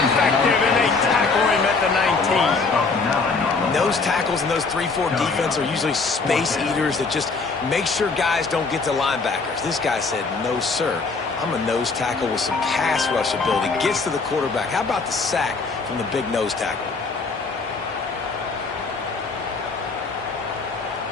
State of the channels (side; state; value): right; quieter; 4.3 dB